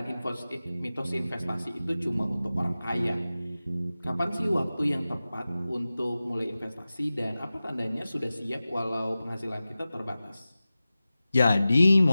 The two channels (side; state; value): both; inverted; correlation -0.96